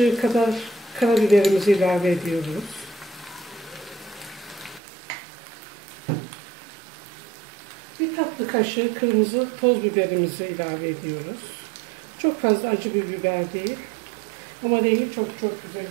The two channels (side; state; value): left; drops out; at 4.8 s